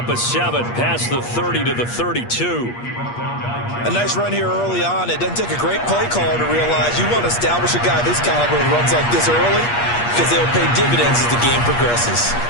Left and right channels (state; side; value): late; right; 8.4 ms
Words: of 7 past the 30 to the 32. A nice run here early on. It doesn't take a great play caller to realize you want to establish a guy this caliber who runs like this early because they'll pay dividends as the game progresses.